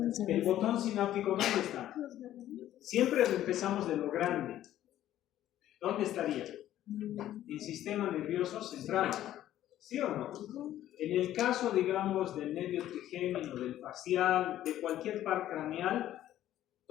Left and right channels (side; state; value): right; quieter; 12.7 dB